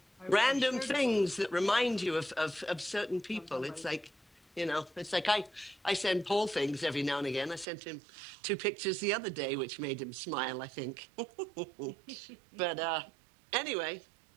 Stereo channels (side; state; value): left; drops out; at 7.7 s